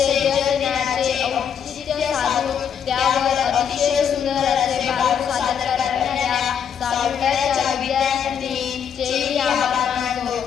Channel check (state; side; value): quieter; right; 7.9 dB